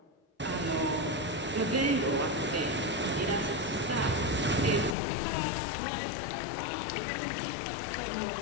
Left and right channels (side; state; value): right; drops out; at 5.0 s